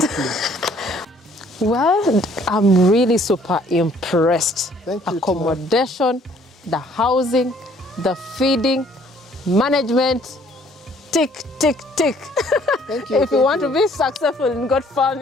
Well, I'm really super impressed. Thank you. Accommodation, the housing, the feeding, management, tick, tick, tick. Thank you. If you want to be successful in goat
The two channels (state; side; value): normal; both; correlation 0.60